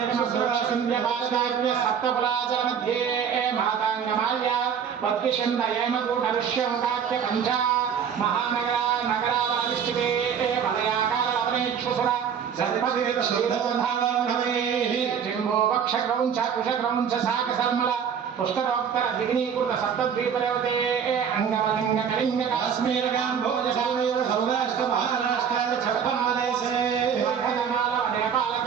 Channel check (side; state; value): left; quieter; 7.6 dB